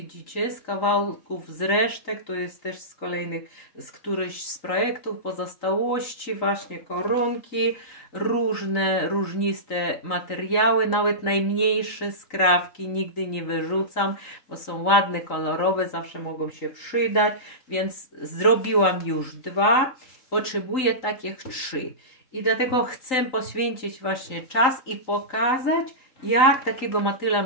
z kawałków z resztek, to jest też z którychś z projektów, pozostałości, właśnie koronki, różniste materiały, nawet najmniejsze skrawki nigdy nie wyrzucam, bo są ładne, kolorowe, zawsze mogą się przydać, więc zrobiłam już 2, potrzebuję takich 3 i dlatego chcę poświęcić właśnie czas i pokazać, jak takiego motyla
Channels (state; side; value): late; right; 3.9 ms